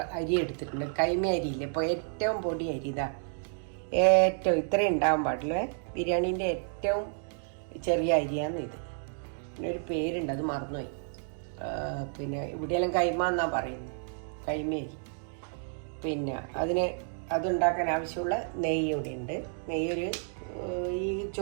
അരി എടുത്തിട്ടുണ്ട്. കൈമ അരിയില്ല, ഇപ്പോൾ ഏറ്റവും പൊടി അരി. ഇതാ ഏറ്റവും ഇത്രയും ഉണ്ടാകാൻ പാടില്ലേ. ബിരിയാണീൻ്റെ ഏറ്റവും ചെറിയ അരിയാന്ന് ഇത്. പിന്നെ ഒരു പേരുണ്ട്, അത് മറന്നുപോയി. പിന്നെ ഇവിടെയെല്ലാം കൈമ എന്നാണ് പറയുന്നത്, കൈമേരി. പിന്നെ അതുണ്ടാക്കാൻ ആവശ്യമുള്ള നെയ്യ് ഇവിടെ ഉണ്ട്. നെയ്യൊരു ഈ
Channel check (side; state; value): left; silent; digital silence